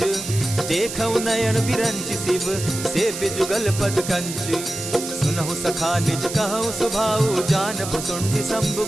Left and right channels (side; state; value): right; noise; hiss, 8 dB below the sound